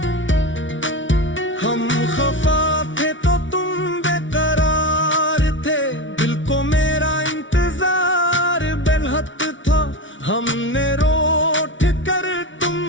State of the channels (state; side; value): late; right; 0.56 ms